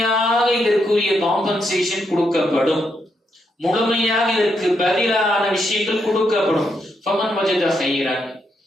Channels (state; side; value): normal; both; correlation 0.79